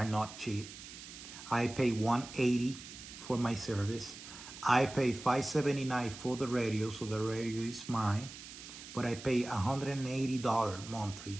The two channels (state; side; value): noise; right; hiss, 13 dB below the sound